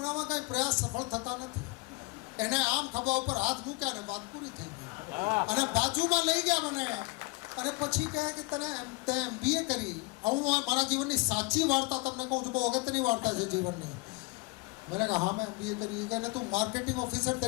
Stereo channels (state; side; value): quieter; right; 27.6 dB